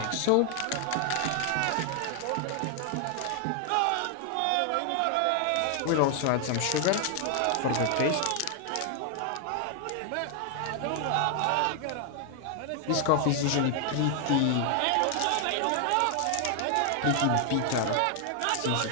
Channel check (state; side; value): different; both; correlation 0.00